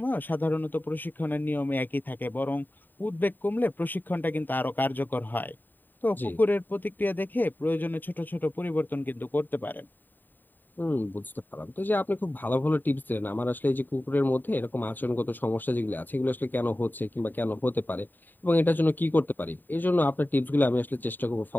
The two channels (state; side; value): late; right; 0.090 ms